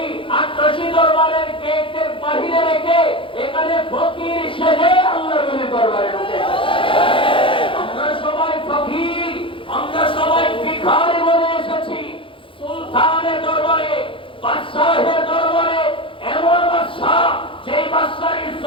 আট্রাসি দরবারের গেটের বাহিরে রেখে এখানে ফকির সেজে আল্লাহর ওলি দরবারে ঢুকে। আমরা সবাই ফকির, আমরা সবাই ভিখারি বলে এসেছি সুলতানের দরবারে, বাদশাহের দরবারে। এমন বাদশাহ যেই বাদশার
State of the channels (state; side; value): late; right; 0.25 ms